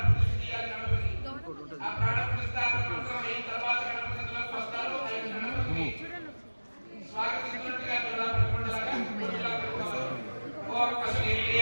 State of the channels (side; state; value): both; inverted; correlation -1.00